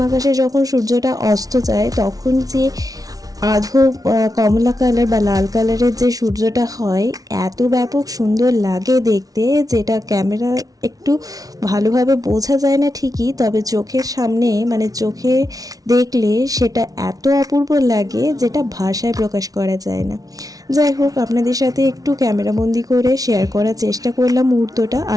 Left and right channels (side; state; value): left; late; 0.18 ms